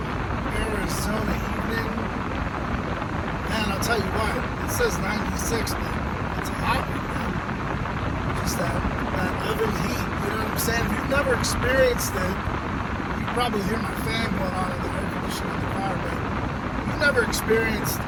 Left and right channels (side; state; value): both; identical; correlation 1.00